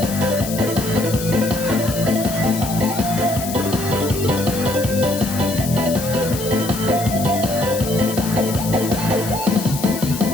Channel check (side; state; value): left; noise; hiss, 9 dB below the sound